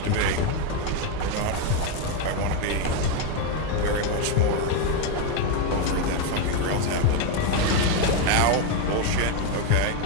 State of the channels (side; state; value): both; different; correlation 0.02